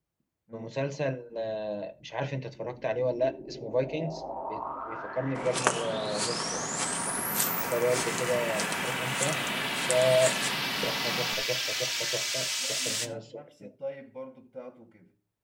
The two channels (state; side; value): identical; both; correlation 1.00